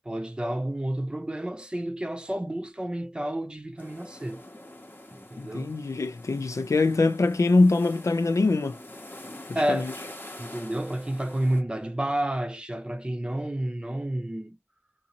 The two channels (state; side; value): normal; both; correlation 0.94